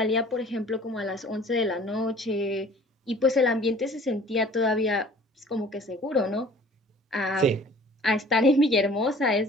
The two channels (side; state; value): both; normal; correlation 0.50